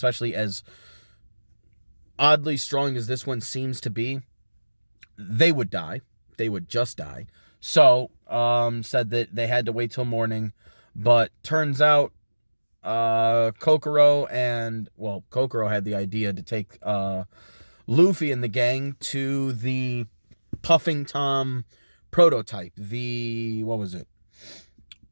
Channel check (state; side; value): inverted; both; correlation -1.00